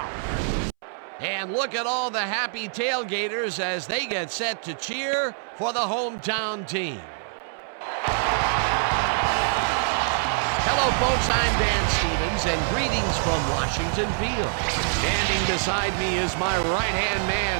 And look at all the happy tailgaters as they get set to cheer for the hometown team. Hello, folks. I'm Dan Stevens, and greetings from Washington Field. Standing beside me is my right-hand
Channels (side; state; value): left; silent; 62 dB below the other